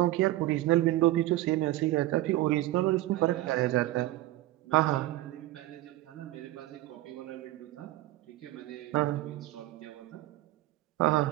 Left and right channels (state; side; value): quieter; left; 16.4 dB